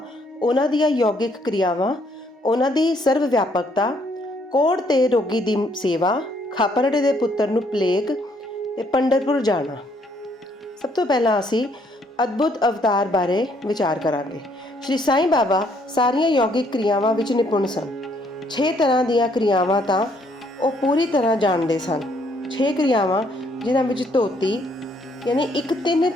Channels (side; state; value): both; normal; correlation 0.68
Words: ਉਹਨਾਂ ਦੀਆਂ ਯੋਗਿਕ ਕਿਰਿਆਵਾਂ, ਉਹਨਾਂ ਦੀ ਸਰਵ ਵਿਆਪਕਤਾ, ਕੋੜ ਤੇ ਰੋਗੀ ਦੀ ਸੇਵਾ, ਖਾਪਰੜੇ ਦੇ ਪੁੱਤਰ ਨੂੰ ਪਲੇਗ ਤੇ ਪੰਡਰਪੁਰ ਜਾਣਾ। ਸਭ ਤੋਂ ਪਹਿਲਾਂ ਅਸੀਂ ਅਦਭੁਤ ਅਵਤਾਰ ਬਾਰੇ ਵਿਚਾਰ ਕਰਾਂਗੇ। ਸ਼੍ਰੀ ਸਾਈਂ ਬਾਬਾ ਸਾਰੀਆਂ ਯੋਗਿਕ ਕਿਰਿਆਵਾਂ ਵਿੱਚ ਨਿਪੁੰਨ ਸਨ। 6 ਤਰ੍ਹਾਂ ਦੀਆਂ ਕਿਰਿਆਵਾਂ ਤਾਂ ਉਹ ਪੂਰੀ ਤਰ੍ਹਾਂ ਜਾਣਦੇ ਸਨ। 6 ਕਿਰਿਆਵਾਂ ਜਿਨ੍ਹਾਂ ਵਿੱਚ ਧੋਤੀ ਯਾਨੀ ਇੱਕ